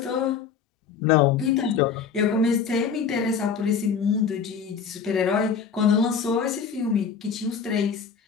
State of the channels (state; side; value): quieter; right; 6.3 dB